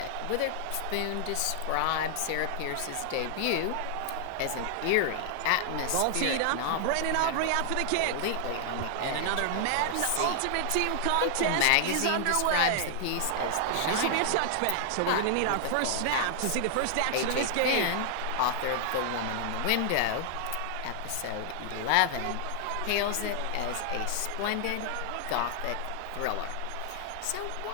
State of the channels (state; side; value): different; both; correlation 0.00